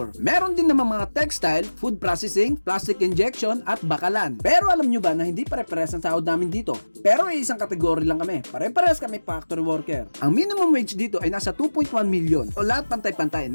Meron din naman mga textile, food processing, plastic injection at bakalan. Pero alam nyo ba na hindi pare-pares ang sahod namin dito? Pero isang kategory lang kami. Pare-pares kami factory worker. Ang minimum wage dito ay nasa 2.1 million o lahat pantay-pantay.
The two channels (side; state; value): both; inverted; correlation -1.00